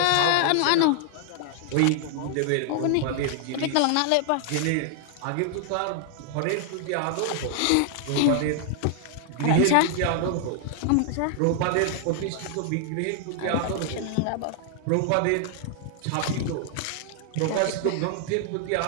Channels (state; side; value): different; both; correlation 0.00